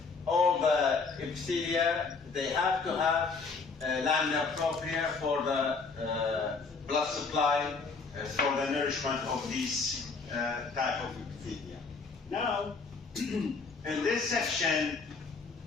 all the epithelia, they have to have lamina propria for the blood supply, for the nourishment of these type of epithelia. Now, in this section,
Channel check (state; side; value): quieter; right; 4.6 dB